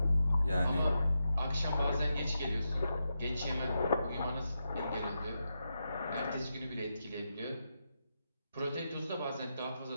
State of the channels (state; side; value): inverted; both; correlation -0.86